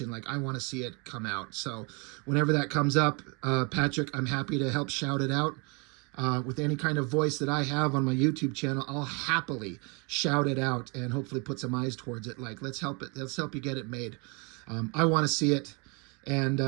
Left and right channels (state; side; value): quieter; left; 31.8 dB